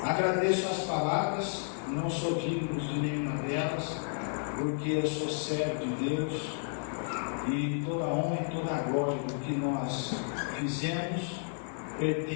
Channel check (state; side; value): silent; right; digital silence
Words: Agradeço as palavras, não sou digno de nenhuma delas, porque eu sou servo de Deus e toda a honra e toda a glória do que nós fizemos